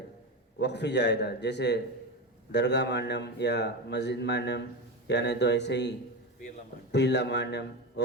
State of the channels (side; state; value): both; normal; correlation 0.19